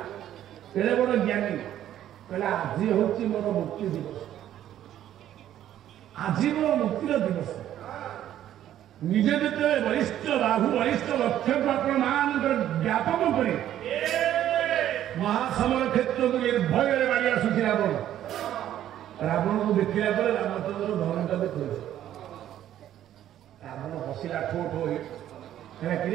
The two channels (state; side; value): quieter; left; 11.7 dB